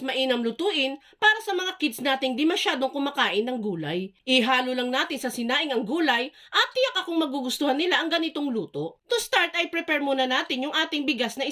lutuin para sa mga kids nating di masyadong kumakain ng gulay. Ihalo lang natin sa sinaing ang gulay at tiyak akong magugustuhan nila ang ganitong luto. To start ay prepare muna natin yung ating bigas na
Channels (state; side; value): identical; both; correlation 1.00